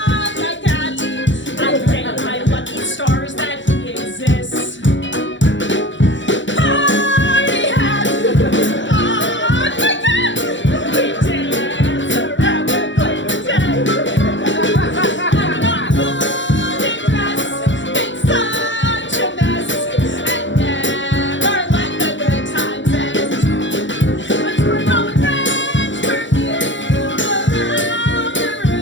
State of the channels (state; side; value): late; right; 0.54 ms